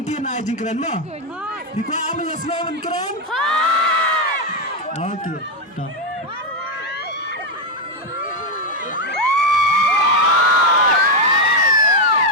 jing keren mo. Biko ame yaslo men keren. Okay. Dah.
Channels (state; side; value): normal; both; correlation 0.05